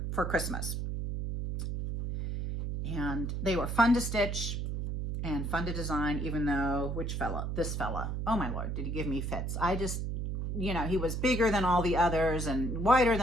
for Christmas. And they were fun to stitch and fun to design, even though, this fella, oh my Lord, did he give me fits. I just, you know, he was bigger than all the others and wider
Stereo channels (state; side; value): noise; right; hum, 2 dB below the sound